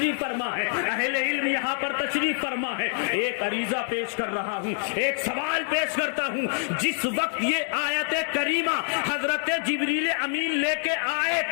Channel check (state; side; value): silent; right; 60 dB below the other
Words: فرما ہے, اہل علم یہاں پر تشریف فرما ہے. ایک عریضہ پیش کر رہا ہوں, ایک سوال پیش کرتا ہوں. جس وقت یہ آیت کریمہ حضرت جبریل امین لے کے آئے